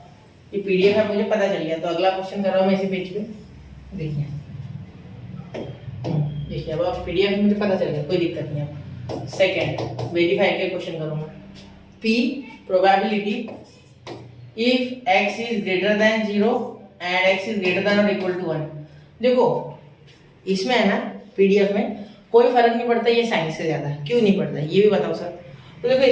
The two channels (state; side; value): identical; both; correlation 1.00